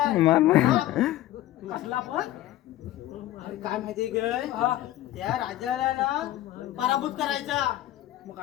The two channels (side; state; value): right; quieter; 14.5 dB